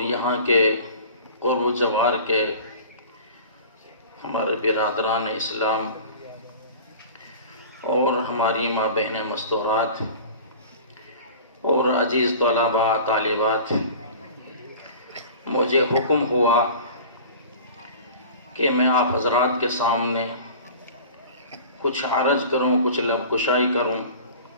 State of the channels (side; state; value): both; inverted; correlation -0.40